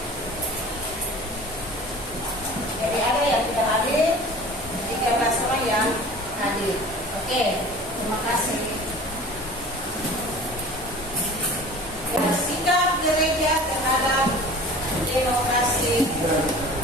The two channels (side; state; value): both; normal; correlation 0.42